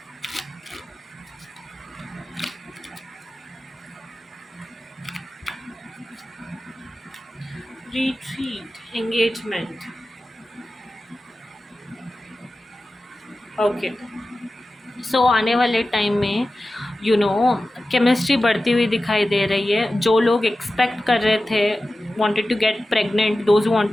Retreat. Engagement. Okay. सो आने वाले टाइम में केमिस्ट्री बढ़ती हुई दिखाई दे रही है, जो लोग एक्सपेक्ट कर रहे थे wanted to get pregnant, those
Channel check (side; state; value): both; normal; correlation 0.95